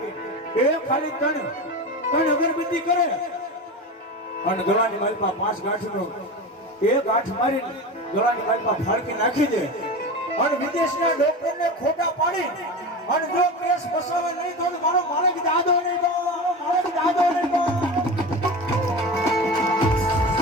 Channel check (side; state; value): both; normal; correlation 0.27